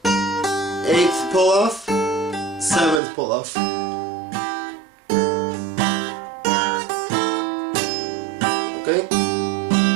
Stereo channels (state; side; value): drops out; left; at 3.0 s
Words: 8th pull off, 7th pull off. Okay?